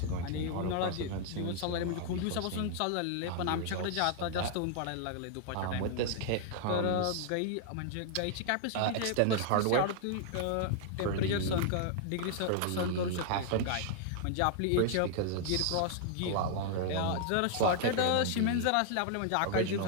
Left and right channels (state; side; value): different; both; correlation 0.00